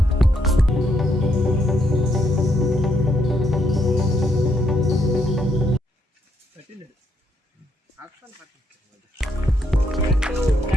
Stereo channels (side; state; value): both; normal; correlation 0.75